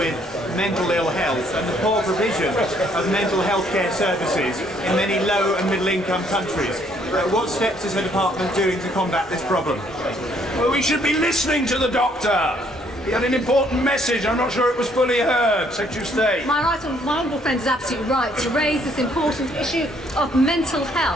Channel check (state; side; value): normal; both; correlation 0.66